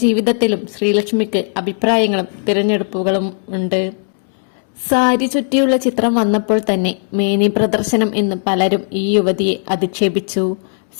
ജീവിതത്തിലും ശ്രീലക്ഷ്മിക്ക് അഭിപ്രായങ്ങളും തിരഞ്ഞെടുപ്പുകളും ഉണ്ട്. സാരി ചുറ്റിയുള്ള ചിത്രം വന്നപ്പോൾ തന്നെ മേനി പ്രദർശനം എന്ന് പലരും ഈ യുവതിയെ അധിക്ഷേപിച്ചു.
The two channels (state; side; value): silent; right; 60 dB below the other